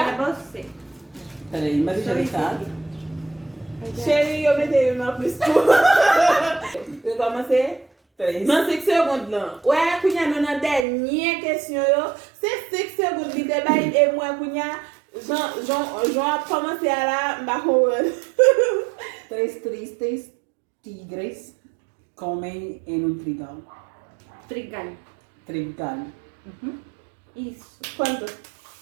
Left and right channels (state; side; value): drops out; left; at 10.9 s